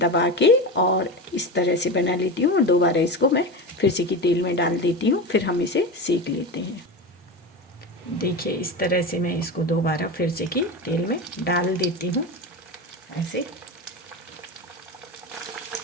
के और इस तरह से बना लेती हूँ, और दोबारा इसको मैं फिर से की तेल में डाल देती हूँ, फिर हम इसे सेक लेते हैं। देखिए इस तरह से मैं इसको दोबारा फिर से की तेल में डाल देती हूँ ऐसे,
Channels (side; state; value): both; normal; correlation 0.23